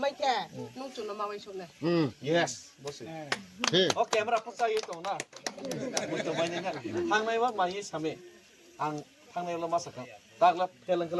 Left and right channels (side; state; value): both; identical; correlation 1.00